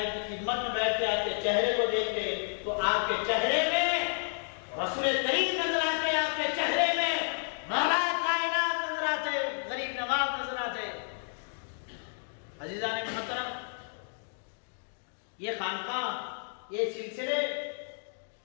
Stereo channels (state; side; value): silent; right; 57 dB below the other